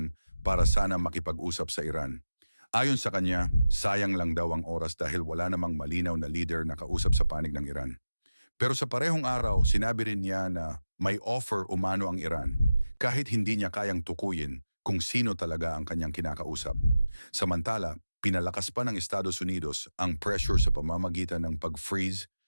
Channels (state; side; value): inverted; both; correlation -0.95